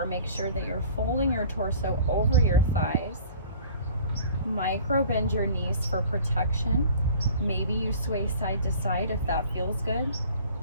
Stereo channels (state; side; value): inverted; both; correlation -0.48